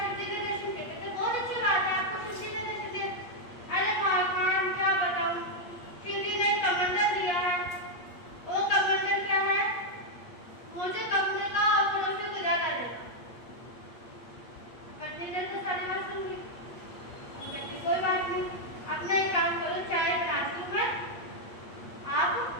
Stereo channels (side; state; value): right; late; 8.5 ms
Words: शिव जी ने दर्शन किए, कहते बहुत अच्छी बात है, आपको शिव जी ने दर्शन दिया। अरे भाई खान क्या बताऊं, शिव जी ने कमंडल दिया है, वो कमंडल क्या है, मुझे कमंडल का पड़ोसी को ज्यादा देगा। पत्नी ने तो सारी बात सुन ली, कहती कोई बात नहीं, अपना एक काम करो, चाय बनाती हूँ मैं, आप